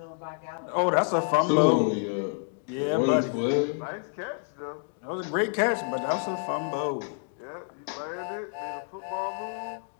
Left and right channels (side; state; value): right; silent; 59 dB below the other